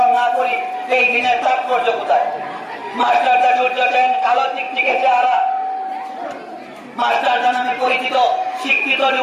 না করি, এই দিনের তাৎপর্য কোথায়? মাস্টারদা সূর্য সেন, কালো চিকচিকে চেহারা, মাস্টারদা নামে পরিচিত শিক্ষিত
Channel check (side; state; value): both; identical; correlation 1.00